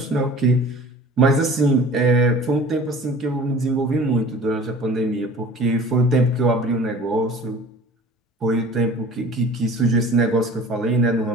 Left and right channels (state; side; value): normal; both; correlation 0.44